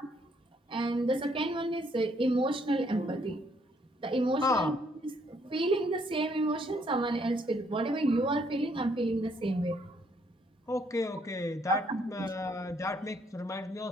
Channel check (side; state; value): both; normal; correlation 0.69